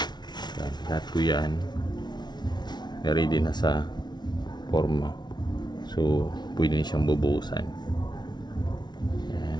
Yan. Lahat ko yan. Ready na sa forma. So pwede na siyang bubuhusan. Yan.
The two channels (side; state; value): right; late; 0.20 ms